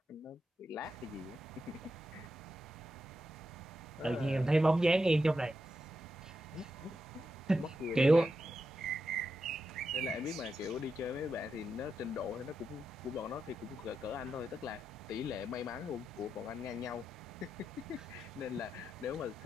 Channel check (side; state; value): both; normal; correlation 0.86